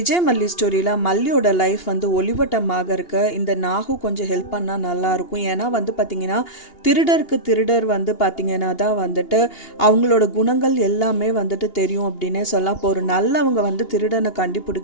மல்லி ஸ்டோரியில் மல்லியோட லைஃப் வந்து ஒளிவட்டமாக இருக்க இந்த நாகு கொஞ்சம் ஹெல்ப் பண்ணால் நல்லாயிருக்கும். ஏன்னா வந்து பார்த்திங்கன்னா திருடர் வந்து பார்த்திங்கன்னா தான் வந்துட்டு அவங்களோட குணங்கள் எல்லாமே வந்துட்டு தெரியும் அப்படின்னே சொல்லலாம். இப்போ ஒரு நல்லவங்க வந்து திருடனை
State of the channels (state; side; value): late; right; 2.8 ms